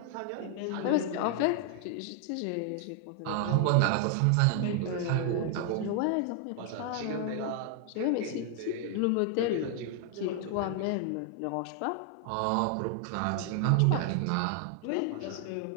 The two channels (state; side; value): different; both; correlation 0.00